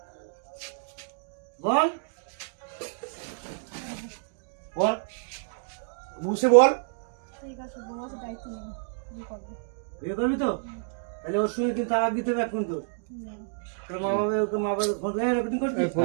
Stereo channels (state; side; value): silent; left; digital silence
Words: বল बोल मुंह से बोल ঠিক আছে বউকে দায়িত্ব নেই বিয়ে করবো বিয়ে করবি তো তাহলে ওর সঙ্গে কিন্তু তালাক দিতে হবে এখন তো তোর মা বাবা ওকে মা বাবা ফোন করে রেকর্ডিং করছিস ফোন